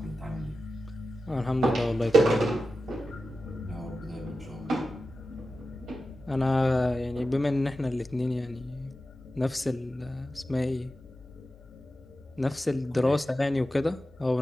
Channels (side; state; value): both; normal; correlation 0.92